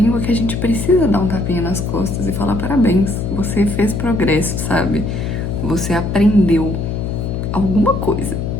que a gente precisa dar um tapinha nas costas e falar parabéns, você fez progresso, sabe? Você aprendeu alguma coisa.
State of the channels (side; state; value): left; noise; hum, 3 dB below the sound